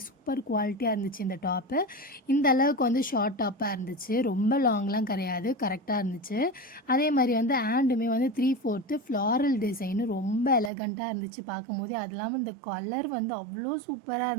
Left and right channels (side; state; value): left; drops out; at 10.7 s